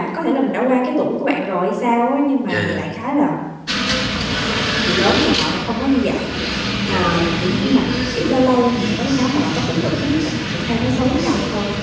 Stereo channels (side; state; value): both; identical; correlation 1.00